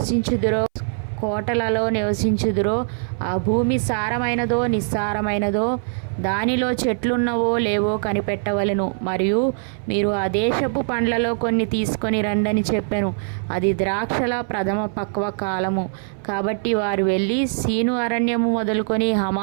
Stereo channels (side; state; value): left; silent; 60 dB below the other